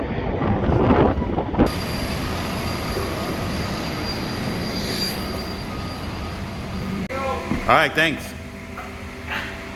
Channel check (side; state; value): both; identical; correlation 1.00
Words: All right, thanks.